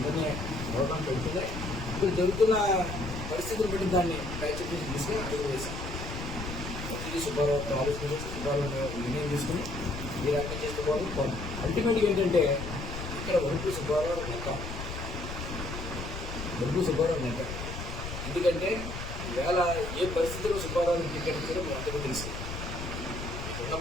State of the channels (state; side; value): noise; left; rumble, 7 dB below the sound